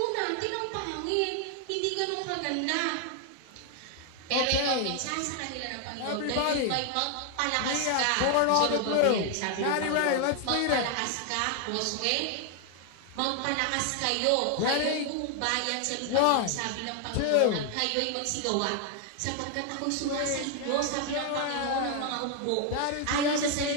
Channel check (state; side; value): different; both; correlation 0.00